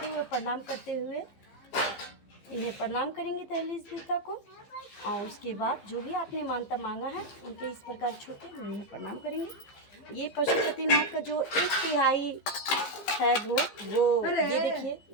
हुए प्रणाम करते हुए इन्हें प्रणाम करेंगे दहलीज देवता को। और उसके बाद जो भी आपने मानता मांगा है उनके इस प्रकार छूटे हम इन्हें प्रणाम करेंगे। ये पशुपतिनाथ का जो 1/3 है वो ये देखिए,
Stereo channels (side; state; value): right; late; 15 ms